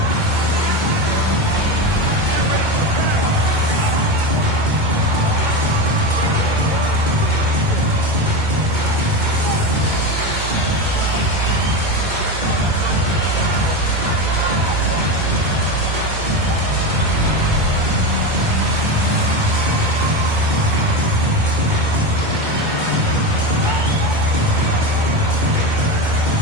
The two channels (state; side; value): late; left; 2.2 ms